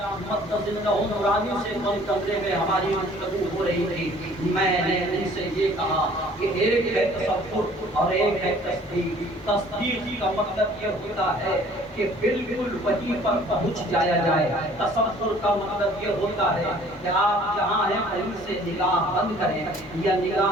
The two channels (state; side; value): normal; both; correlation 0.53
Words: مقدس نورانی سے بند کمرے میں ہماری گفتگو ہو رہی تھی، میں نے ان سے یہ کہا کہ ایک ہے تصور اور ایک ہے تصدیق۔ تصدیق کا مطلب یہ ہوتا ہے کہ بالکل وہیں پر پہنچ جایا جائے، تصور کا مطلب یہ ہوتا ہے کہ آپ جہاں ہیں کہیں سے نگاہ بند کریں یا